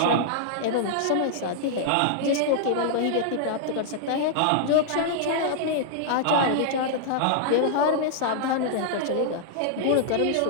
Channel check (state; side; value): different; both; correlation -0.01